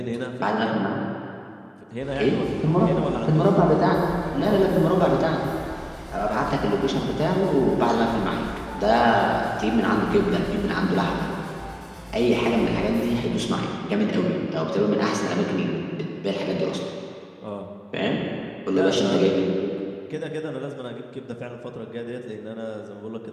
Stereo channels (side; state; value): both; identical; correlation 1.00